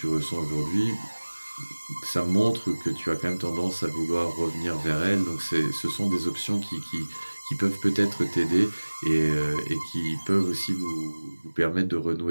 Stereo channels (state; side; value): inverted; both; correlation -1.00